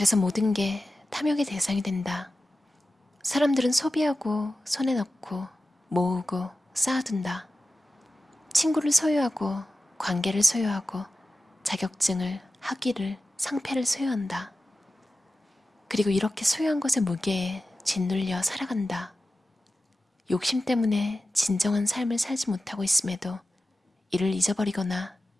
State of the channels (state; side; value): normal; both; correlation 0.94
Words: 모든 게 탐욕의 대상이 된다. 사람들은 소비하고 손에 넣고 모으고 쌓아둔다. 친구를 소유하고 관계를 소유하고 자격증을, 학위를, 상패를 소유한다. 그리고 이렇게 소유한 것의 무게에 짓눌려 살아간다. 욕심 때문에 진정한 삶을 살지 못하고 있음에도 이를 잊어버리거나